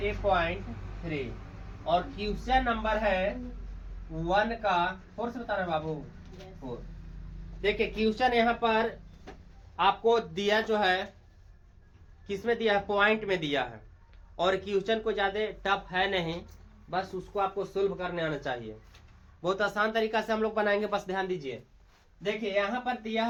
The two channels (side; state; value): both; identical; correlation 1.00